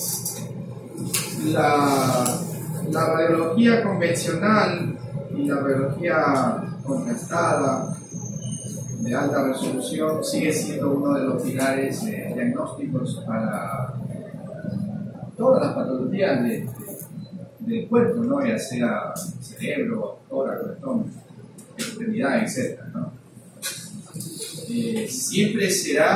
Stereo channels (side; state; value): both; identical; correlation 1.00